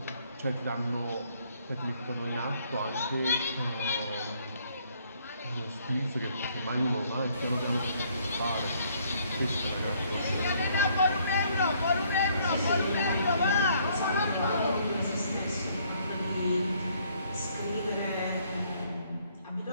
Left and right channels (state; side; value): inverted; both; correlation -0.66